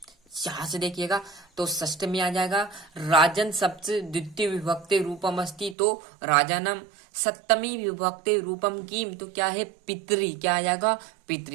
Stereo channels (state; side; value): drops out; left; at 5.8 s